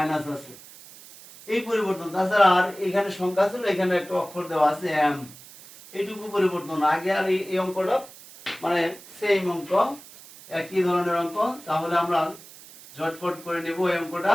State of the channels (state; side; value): noise; right; hiss, 19 dB below the sound